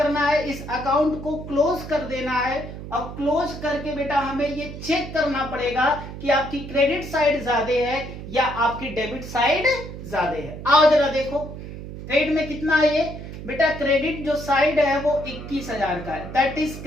है? इस अकाउंट को क्लोज कर देना है। और क्लोज करके बेटा हमें ये चेक करना पड़ेगा कि आपकी क्रेडिट साइड ज्यादा है या आपकी डेबिट साइड ज्यादा है। आओ जरा देखो, क्रेडिट में कितना है ये? बेटा क्रेडिट जो साइड है वो 21,000 का है, दैट इज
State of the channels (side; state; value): right; noise; hum, 10 dB below the sound